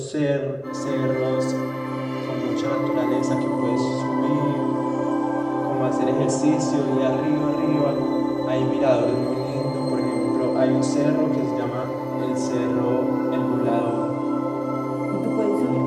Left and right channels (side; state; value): both; identical; correlation 1.00